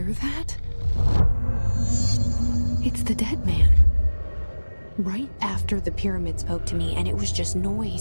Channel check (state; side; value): inverted; both; correlation -1.00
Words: that? It's the dead man. Right after the pyramid spoke to me, and it was just